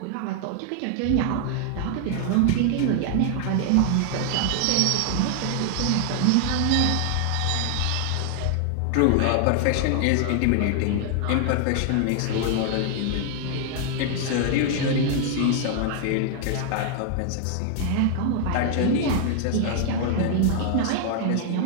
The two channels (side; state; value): both; different; correlation 0.00